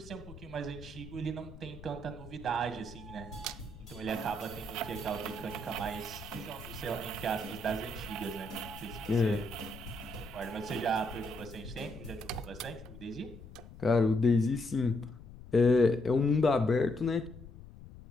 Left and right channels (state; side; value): noise; left; rumble, 16 dB below the sound